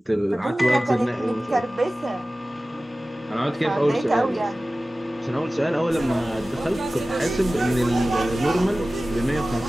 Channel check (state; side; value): normal; both; correlation 0.96